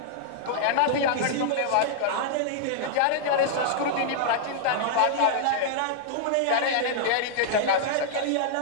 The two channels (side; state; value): both; different; correlation -0.01